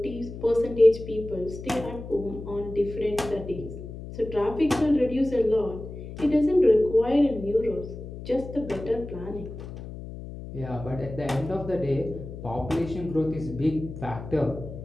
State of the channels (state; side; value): noise; left; hum, 11 dB below the sound